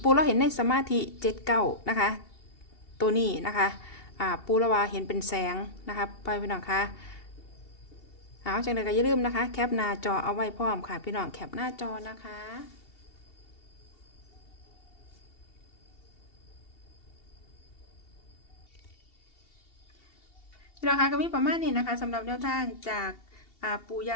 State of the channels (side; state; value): right; late; 2.7 ms